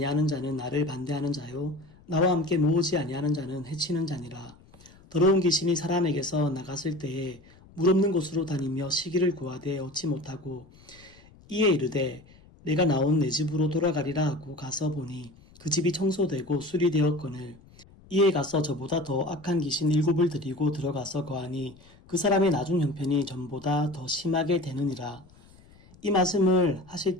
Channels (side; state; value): left; noise; rumble, 25 dB below the sound